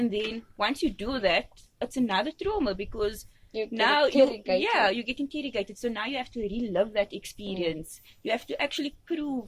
then once you do that, it's another trauma because you get interrogated. So now you have to relive that experience. You have to actually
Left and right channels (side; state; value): both; identical; correlation 1.00